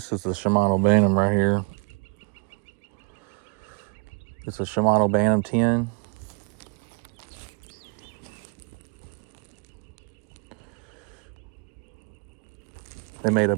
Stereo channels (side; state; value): left; quieter; 35.8 dB